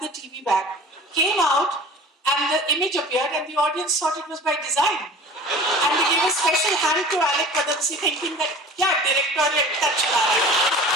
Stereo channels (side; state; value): both; normal; correlation 0.41